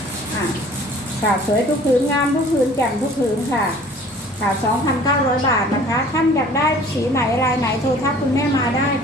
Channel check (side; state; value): both; normal; correlation 0.50